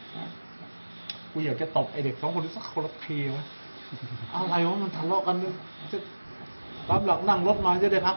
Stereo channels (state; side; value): inverted; both; correlation -1.00